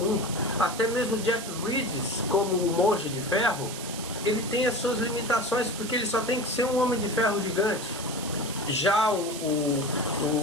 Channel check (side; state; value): right; noise; hiss, 10 dB below the sound